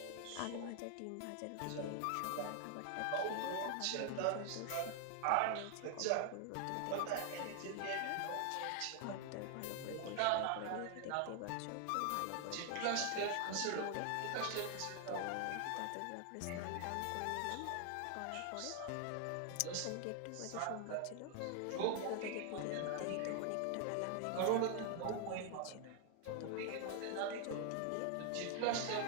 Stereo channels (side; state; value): both; different; correlation 0.00